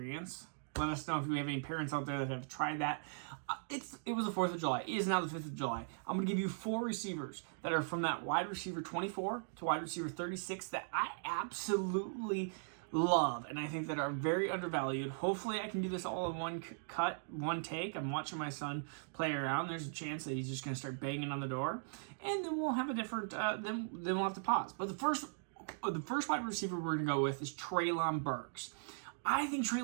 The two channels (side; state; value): left; silent; digital silence